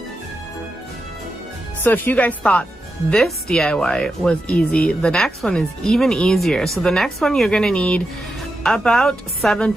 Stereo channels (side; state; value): both; normal; correlation 0.88